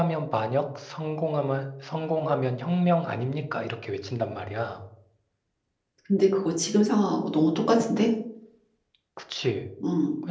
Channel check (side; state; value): both; identical; correlation 1.00